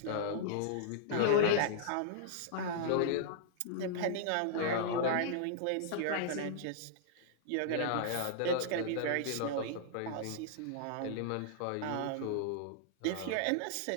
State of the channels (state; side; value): different; both; correlation -0.01